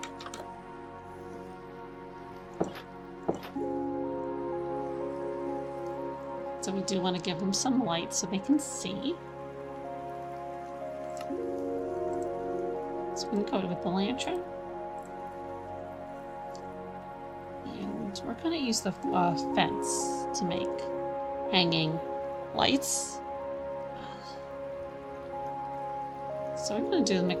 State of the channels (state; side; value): identical; both; correlation 1.00